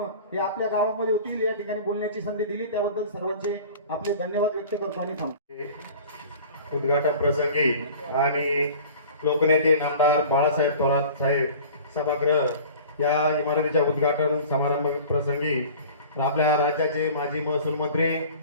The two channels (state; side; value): inverted; both; correlation -0.43